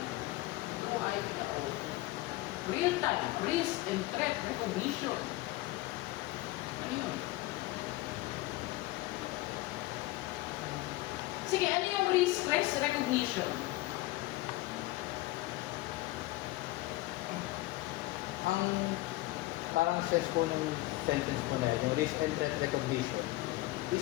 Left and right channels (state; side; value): quieter; right; 19.0 dB